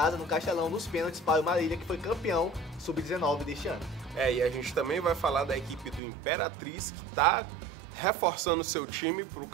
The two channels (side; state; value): left; drops out; at 6.0 s